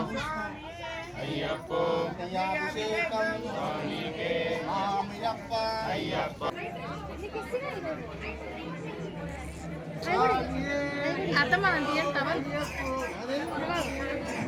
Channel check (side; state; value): both; identical; correlation 1.00